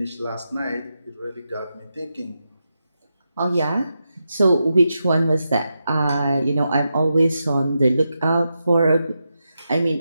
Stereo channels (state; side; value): inverted; both; correlation -0.87